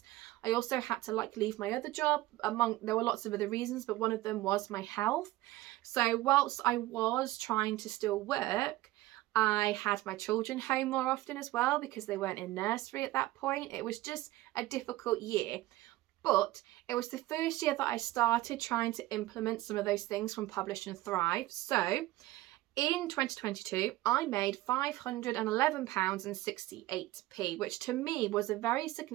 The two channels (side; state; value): left; quieter; 17.3 dB